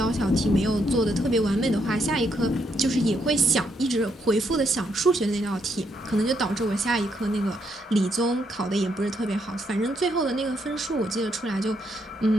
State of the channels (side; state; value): both; normal; correlation 0.76